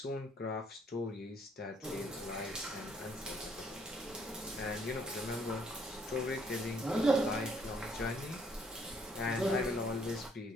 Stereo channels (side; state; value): both; normal; correlation 0.66